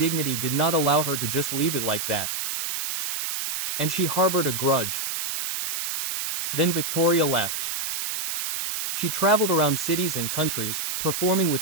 did not allow her to just leave it like that. And she harbored a grudge. Then Victoria left. She traveled around cities and countries, performing with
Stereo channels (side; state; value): right; noise; hiss, 3 dB below the sound